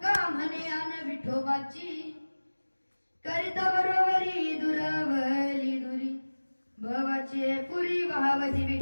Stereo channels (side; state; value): both; inverted; correlation -1.00